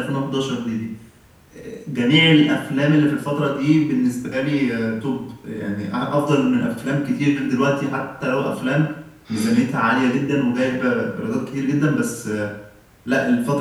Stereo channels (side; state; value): both; identical; correlation 1.00